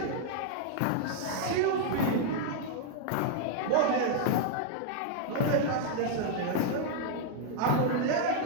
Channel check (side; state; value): both; different; correlation -0.01